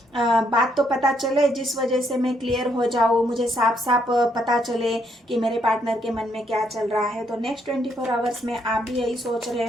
बात तो पता चले जिस वजह से मैं क्लियर हो जाऊँ, मुझे साफ साफ पता चले कि मेरे पार्टनर के मन में क्या चल रहा है। तो नेक्स्ट 24 आवर्स में आप भी यही सोच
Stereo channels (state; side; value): normal; both; correlation 0.73